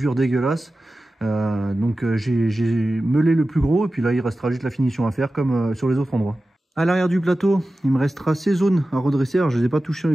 dégueulasse. Donc j'ai meulé le plus gros et puis là il restera juste la finition à faire comme sur les autres endroits. À l'arrière du plateau, il me restera ces zones à redresser. Alors, je ne les ai pas touchées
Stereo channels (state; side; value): normal; both; correlation 0.94